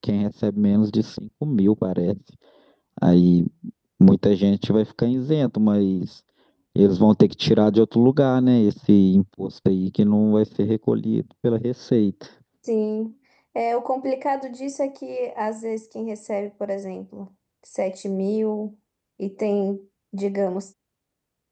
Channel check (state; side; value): identical; both; correlation 1.00